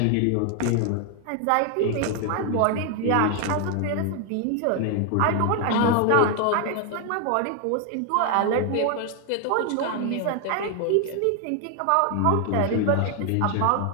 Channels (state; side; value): different; both; correlation 0.00